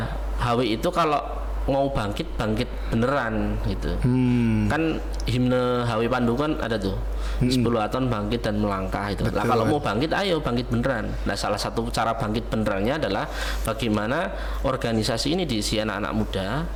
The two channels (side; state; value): both; identical; correlation 1.00